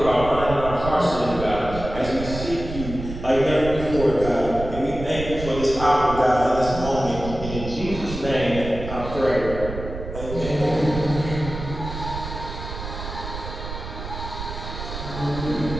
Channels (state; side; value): noise; right; rumble, 8 dB below the sound